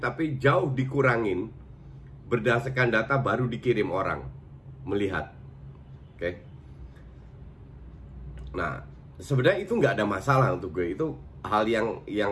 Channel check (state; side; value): identical; both; correlation 1.00